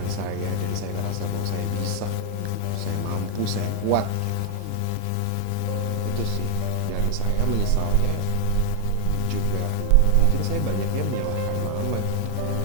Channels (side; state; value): both; different; correlation 0.00